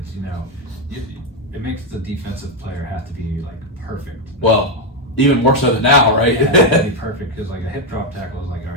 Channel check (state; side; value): normal; both; correlation 0.05